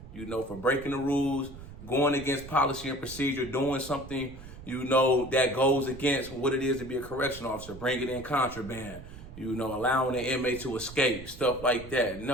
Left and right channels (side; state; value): right; noise; rumble, 15 dB below the sound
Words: for breaking the rules, going against policy and procedure, doing something, that goes against what it is to be a correctional officer, bringing in contraband, allowing the inmate to escape, stuff like that.